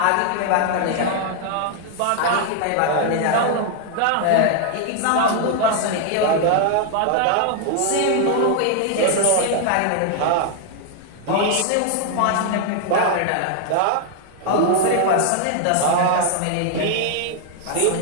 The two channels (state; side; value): different; both; correlation 0.00